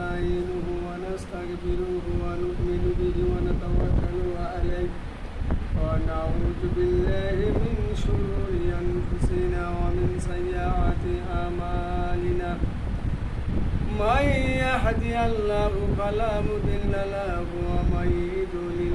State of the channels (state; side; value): identical; both; correlation 1.00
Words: ওয়া নাস্তাগফিরুহু ওয়া নু'মিনু বিহি ওয়া নাতাওয়াক্কালু আলাইহি ওয়া নাউযু বিল্লাহি মিন শুরুরি আনফুসিনা ওয়া মিন সাইয়্যাতি আমালিনা। মান ইয়াহদিহিল্লাহু ফালা মুদিল্লা লাহু ওয়া মান